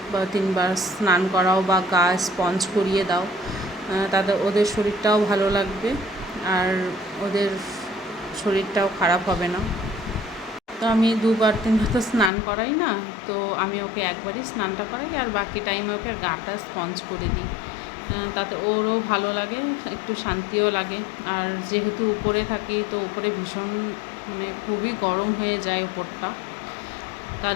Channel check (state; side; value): drops out; right; at 12.3 s